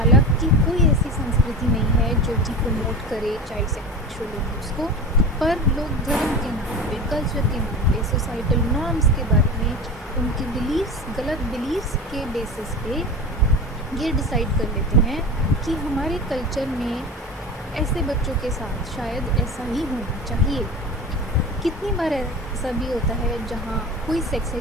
कोई ऐसी संस्कृति नहीं है जो कि प्रमोट करे चाइल्ड सेक्सुअल अब्यूज़ को, पर लोग धर्म के नाम पे, कल्चर के नाम पे, सोसाइटल नॉर्म्स के बारे में, उनके बिलीव्स, गलत बिलीव्स के बेसिस पे ये डिसाइड कर लेते हैं कि हमारे कल्चर में ऐसे बच्चों के साथ शायद ऐसा ही होना चाहिए। कितनी बार ऐसा भी होता है जहाँ कोई सेक्स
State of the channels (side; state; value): both; normal; correlation 0.31